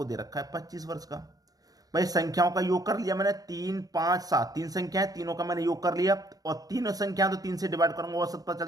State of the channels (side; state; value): left; late; 0.18 ms